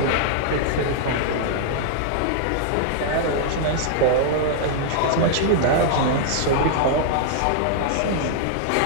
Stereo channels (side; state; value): both; different; correlation -0.01